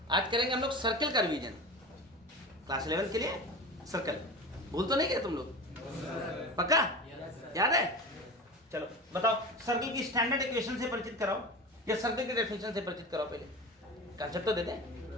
आज करेंगे हम लोग सर्कल का रिवीजन। क्लास 11 के लिए सर्कल भूल तो नहीं गए तुम लोग? पक्का याद है? चलो बताओ, सर्कल की स्टैंडर्ड इक्वेशन से परिचित कराओ या सर्कल की डेफिनेशन से परिचित कराओ। पहले कंसेप्ट तो देते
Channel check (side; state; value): both; normal; correlation 0.30